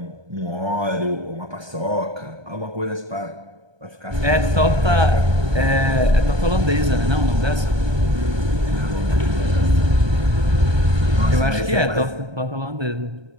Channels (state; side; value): late; left; 1.3 ms